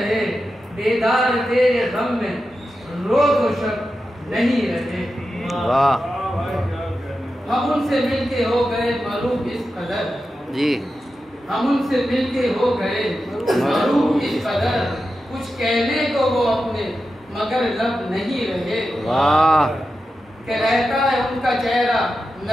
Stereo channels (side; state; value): both; normal; correlation 0.90